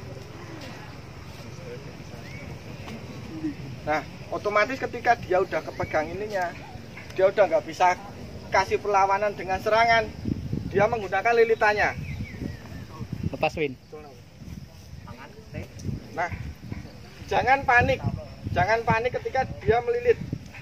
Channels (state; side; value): identical; both; correlation 1.00